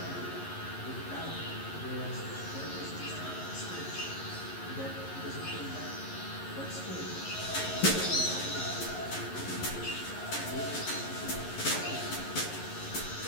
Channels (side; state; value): right; late; 11 ms